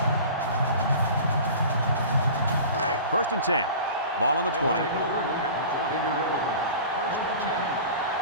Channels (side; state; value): both; inverted; correlation -0.38